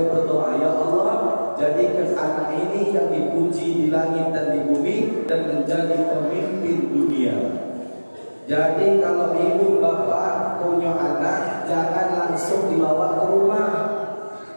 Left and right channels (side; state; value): both; inverted; correlation -1.00